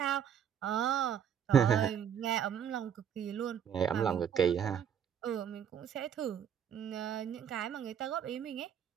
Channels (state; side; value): quieter; left; 8.5 dB